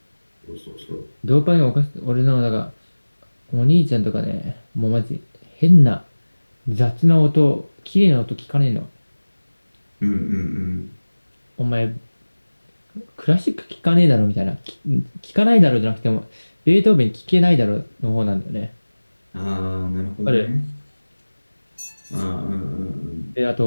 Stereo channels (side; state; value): both; inverted; correlation -1.00